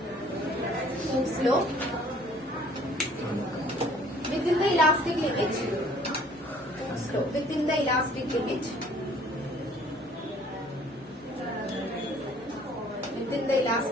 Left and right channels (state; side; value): normal; both; correlation 0.56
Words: law within the elastic limit. Within the elastic limit within the